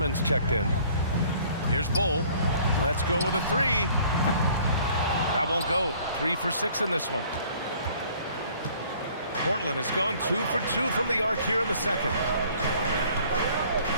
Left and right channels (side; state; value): both; inverted; correlation -0.55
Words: checked in. Here's Bull. Let's go with a three. That won't go. 3 for 6 in this one. Portland has gone 2 for 2 from the arc here in the second.